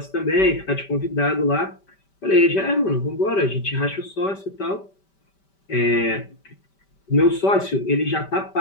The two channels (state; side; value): late; right; 5.1 ms